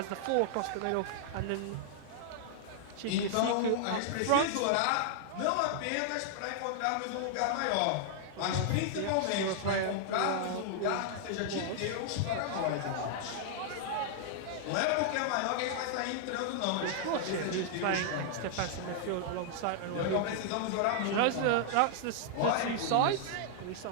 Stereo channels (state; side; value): different; both; correlation -0.01